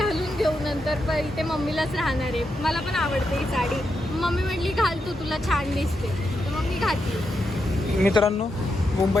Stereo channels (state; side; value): normal; both; correlation 0.84